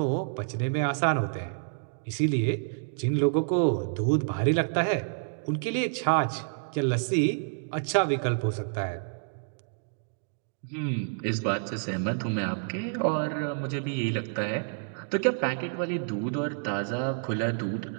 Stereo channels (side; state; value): left; silent; digital silence